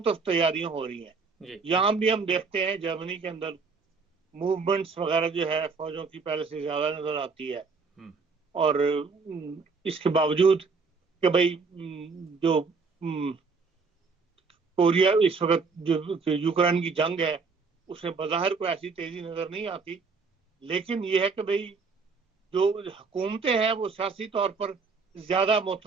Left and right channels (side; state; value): left; quieter; 4.7 dB